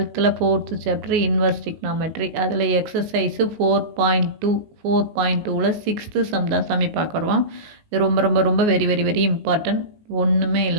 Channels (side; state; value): left; late; 19 ms